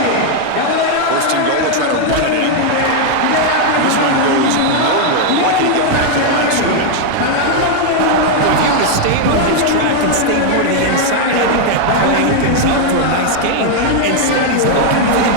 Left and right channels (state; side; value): different; both; correlation 0.00